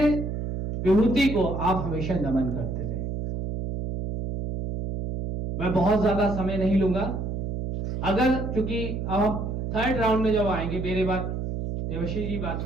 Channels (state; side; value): noise; right; hum, 4 dB below the sound